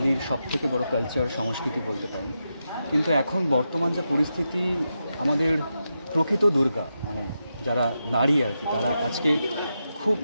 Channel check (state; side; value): inverted; both; correlation -0.87